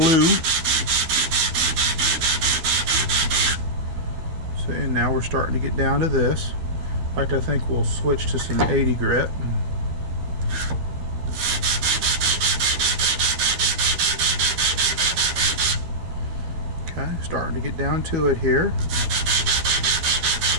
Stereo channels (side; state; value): left; late; 12 ms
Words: See, and now we're starting to get down to this. In fact, I think we'll switch to some 80 grit. Okay, starting to get down to it here.